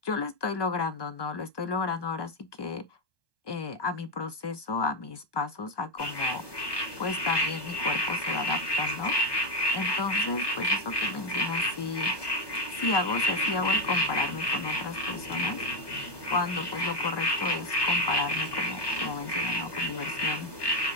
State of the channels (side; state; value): right; late; 1.2 ms